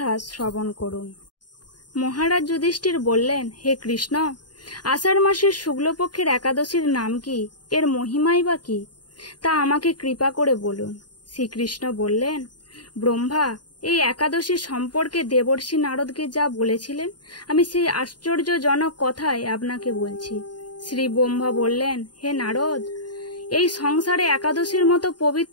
শ্রবণ করুন। মহারাজ যুধিষ্ঠির বললেন, হে কৃষ্ণ, আষাঢ় মাসের শুক্লপক্ষের একাদশীর নাম কি, এর মহিমাই বা কি, তা আমাকে কৃপা করে বলুন। শ্রীকৃষ্ণ বললেন, ব্রহ্মা এই একাদশী সম্পর্কে দেবর্ষি নারদকে যা বলেছিলেন, আমি সেই আশ্চর্যজনক কথাই আপনাকে বলছি। শ্রী ব্রহ্মা বললেন, হে নারদ, এই সংসারে একাদশীর মতো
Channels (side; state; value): right; late; 0.70 ms